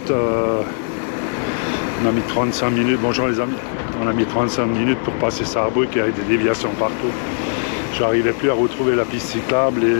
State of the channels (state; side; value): silent; right; 58 dB below the other